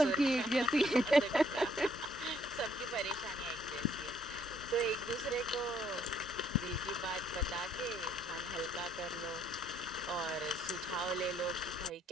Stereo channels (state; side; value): normal; both; correlation 0.66